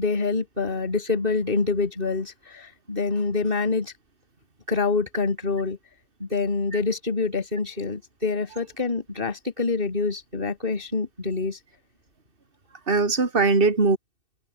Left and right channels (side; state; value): left; late; 2.6 ms